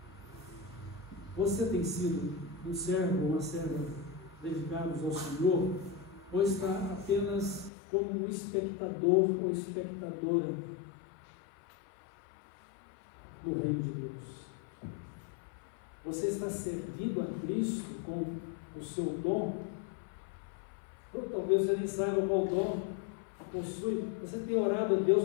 Você tem sido um servo ou uma serva dedicados ao Senhor, ou está apenas como um espectador ou espectadora do reino de Deus? Você está servindo a Cristo com o seu dom? Ou talvez você nem saiba qual dom possui. Você tem orado a Deus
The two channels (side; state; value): right; drops out; at 7.7 s